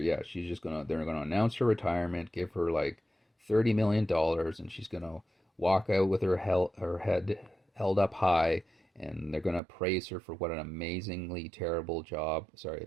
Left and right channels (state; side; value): drops out; left; at 9.6 s